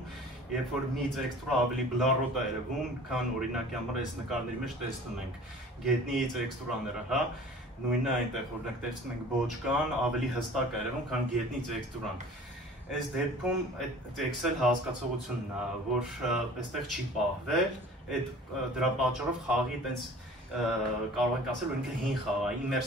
երբ որ մի տեքստուրը ավելի բլառոտ է երևում, քան օրինակի համար այս նկարների մեջ տեսնում ենք գետնի տեքստուրաները, հա, նույնը այնտեղ օրինակ տեսնում ենք բոճկան ավելի հստակ է երևում, քան գետնի տեքստուրան։ Այս դեպքում այդ Excel հասկացողությունն է, որ այստեղ չի պահվել, դրա պատճառով խաղի այտենց կարող ենք ասել, որ ինքը հին խաղ է,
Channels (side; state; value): both; normal; correlation 0.45